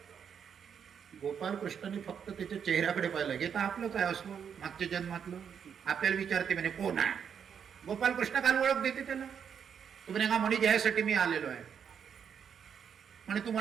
गोपालकृष्णाने फक्त त्याच्या चेहऱ्याकडे पाहिलं. घेता आपलं काय अस्वल, मागच्या जन्मातलं. आपल्याला विचारते म्हणे कोण आहे. गोपालकृष्ण काल ओळख देते त्याला. तू म्हणे हा मणी घ्यायसाठी मी आलेलो आहे म्हणे. तू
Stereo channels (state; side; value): quieter; left; 7.6 dB